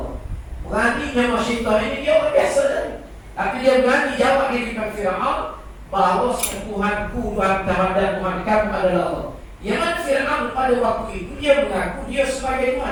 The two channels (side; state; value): both; identical; correlation 1.00